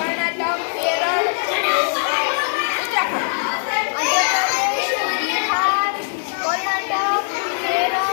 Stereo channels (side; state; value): right; silent; digital silence